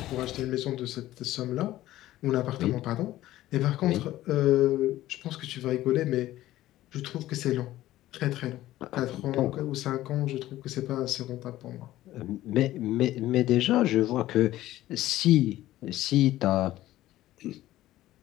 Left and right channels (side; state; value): right; quieter; 15.1 dB